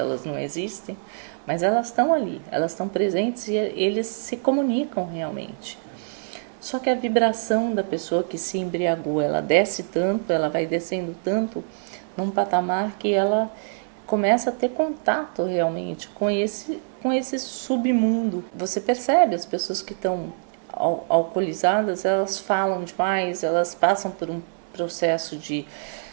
não existem, mas elas estão ali, elas estão presentes e eles se comunicam realmente. Só que a vibração da pessoa que se embriagou, ela desce tanto, ela vai descendo tanto, num patamar que ela começa a ter contato realmente com esse submundo. Você percebe as pessoas que estão alcoolizadas, elas falam demais, elas passam por um processo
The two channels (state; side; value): silent; left; 62 dB below the other